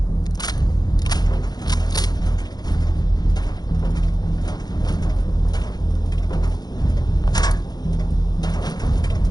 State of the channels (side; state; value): right; late; 0.19 ms